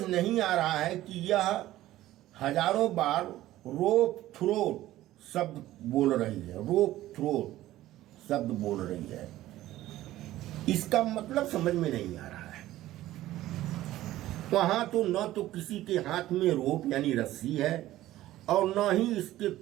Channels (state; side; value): quieter; left; 15.0 dB